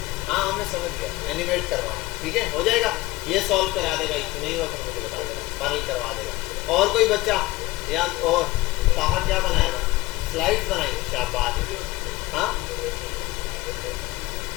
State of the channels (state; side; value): quieter; right; 19.6 dB